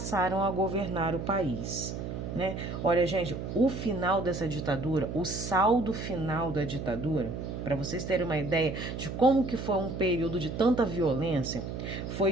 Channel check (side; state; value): right; noise; hum, 6 dB below the sound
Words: a governar o país. Olha, gente, o final dessa ditadura, o saldo final da ditadura, para vocês terem uma ideia de como que foi um período de tanta violência, foi